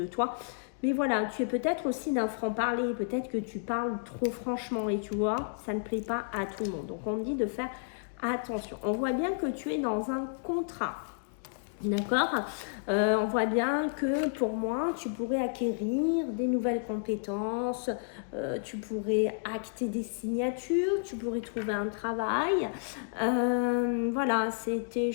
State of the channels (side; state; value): right; silent; digital silence